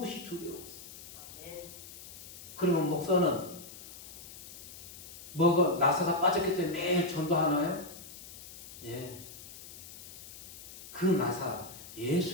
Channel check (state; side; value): noise; left; hiss, 14 dB below the sound